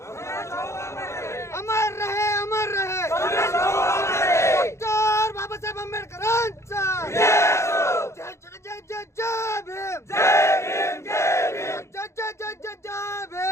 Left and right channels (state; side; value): late; right; 0.13 ms